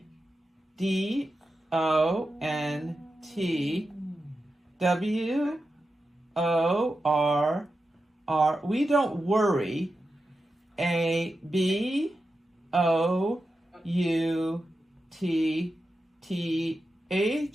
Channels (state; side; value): normal; both; correlation 0.90